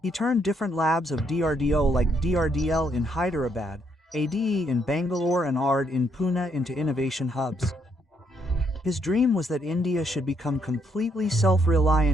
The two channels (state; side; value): normal; both; correlation 0.73